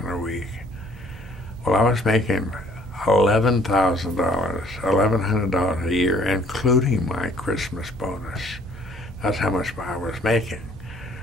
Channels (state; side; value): normal; both; correlation 0.58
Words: a week. Well, I was making $11,100 a year, including my Christmas bonus. That's how much I was making.